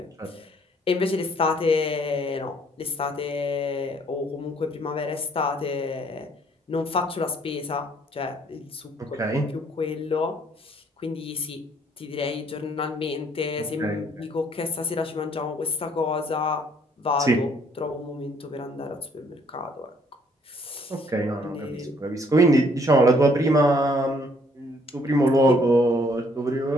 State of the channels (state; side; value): normal; both; correlation 0.64